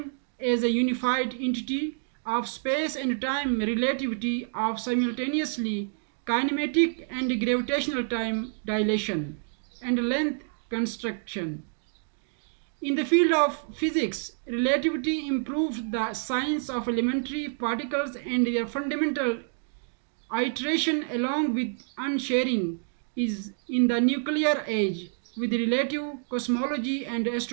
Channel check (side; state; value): left; silent; digital silence